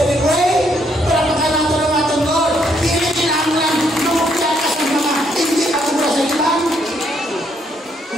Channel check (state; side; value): normal; both; correlation 0.72